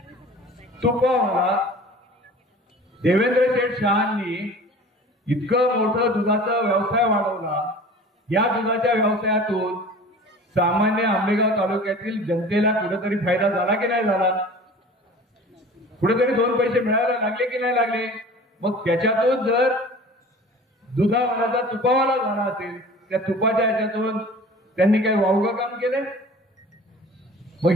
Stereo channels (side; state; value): both; normal; correlation 0.42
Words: तुपावाला देवेंद्र शेठ शहांनी इतकं मोठं दुधाचा व्यवसाय वाढवला. या दुधाच्या व्यवसायातून सामान्य आंबेगाव तालुक्यातील जनतेला कुठेतरी फायदा झाला की नाही झाला? कुठेतरी दोन पैसे मिळायला लागले की नाही लागले? मग त्याच्यातून जर दुधावाल्याचा तुपावाला झाला असेल, त्या तुपाच्या ह्याच्यातून त्यांनी काही वावगं काम केलंय? मग